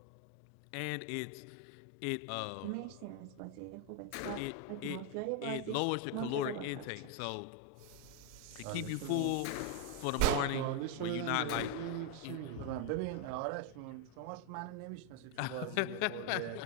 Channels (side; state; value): both; different; correlation 0.00